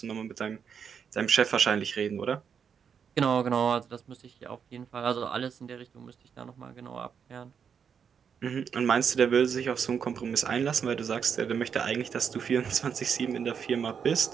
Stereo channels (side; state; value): left; quieter; 7.1 dB